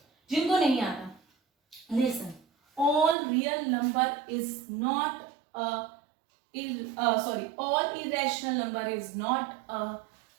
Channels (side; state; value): left; drops out; at 3.2 s